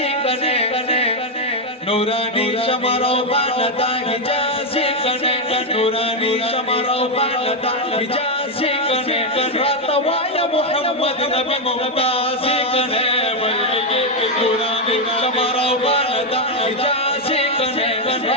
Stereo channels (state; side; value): normal; both; correlation 0.03